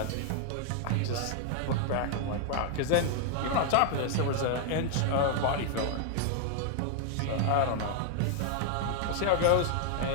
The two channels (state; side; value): different; both; correlation 0.00